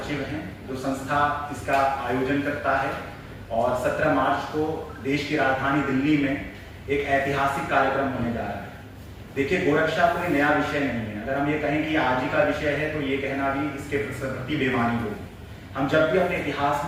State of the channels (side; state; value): both; identical; correlation 1.00